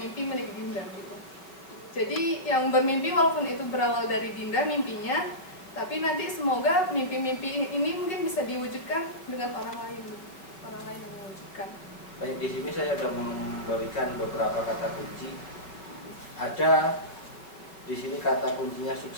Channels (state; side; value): late; right; 5.6 ms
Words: milik Dinda gitu. Jadi yang bermimpi walaupun itu berawal dari Dinda mimpinya, tapi nanti semoga mimpi-mimpi ini mungkin bisa diwujudkan dengan orang lain gitu. Orang lain yang mewujudkan. Baik, di sini saya sudah memberikan beberapa kata kunci. Ada di sini kata kuncinya